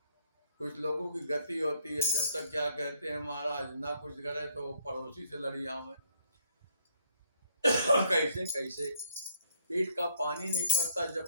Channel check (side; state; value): both; inverted; correlation -0.68